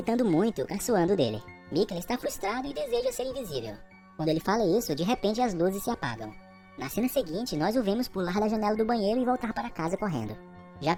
muito, caçoando dele. Michele está frustrado e deseja ser invisível. Quando ele fala isso, de repente as luzes se apagam. Na cena seguinte, nós o vemos pular da janela do banheiro e voltar para casa correndo. Já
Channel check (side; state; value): both; identical; correlation 1.00